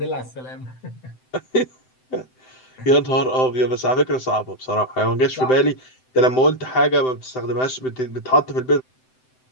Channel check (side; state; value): right; late; 7.8 ms